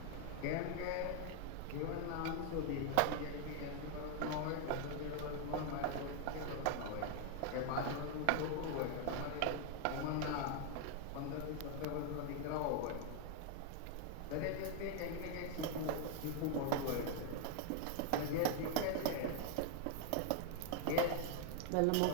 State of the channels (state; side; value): different; both; correlation 0.00